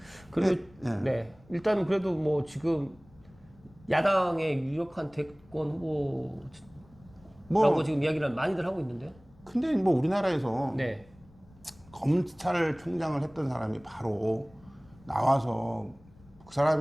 그리고 네. 네. 일단 그래도 뭐 지금 야당의 유력한 대권 후보라고 지금 이야기를 많이들 하고 있는데요. 근데 뭐 우리나라에서 네. 검찰총장을 했던 사람이 바로 나와서 그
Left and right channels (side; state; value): left; noise; rumble, 26 dB below the sound